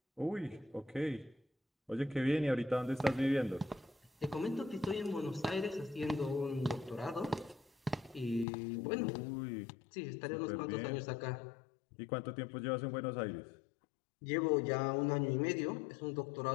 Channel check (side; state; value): right; drops out; at 8.5 s